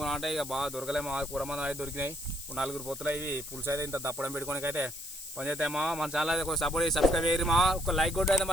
అంటే ఇక బాగా దొరకలేమో. కూర మంది అయితే దొరికినాయి. ఇప్పుడు 4 పొత్తులు ఇవి పులుసు అయితే ఇంత దప్పడం పెట్టుకోనికి అయితే పని చేస్తామా. మన ఛానల్ అయితే కొంచెం సపోర్ట్ చేసి సబ్స్క్రైబ్ చేయరు మా. ఒక లైక్ కొట్టి అయితే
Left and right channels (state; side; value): noise; left; hiss, 11 dB below the sound